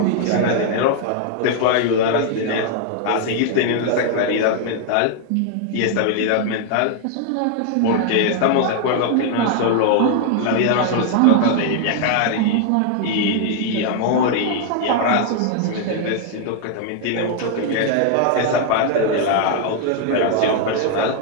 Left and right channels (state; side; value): different; both; correlation 0.00